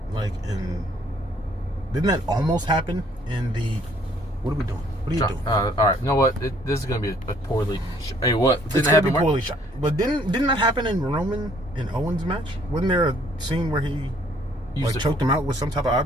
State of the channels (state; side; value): normal; both; correlation 0.62